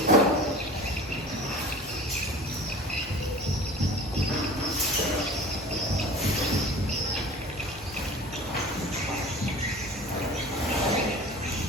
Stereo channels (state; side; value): normal; both; correlation 0.40